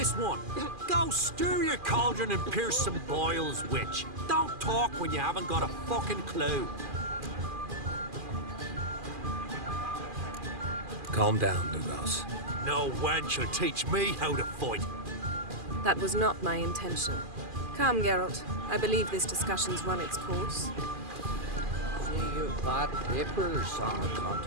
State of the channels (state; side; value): late; left; 2.4 ms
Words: one. Go stir your cauldron and pierce some boils, witch. Don't talk when you haven't got a fucking clue. Calm down, Lugos. No wench will teach me how to fight. That was not my intention. Come, Geralt. I believe this discussion's run its course. See you bad papers on the